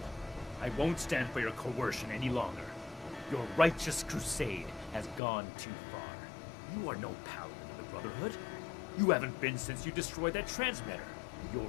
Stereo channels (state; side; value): drops out; right; at 5.2 s